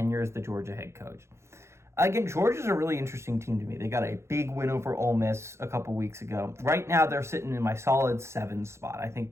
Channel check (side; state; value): left; late; 0.13 ms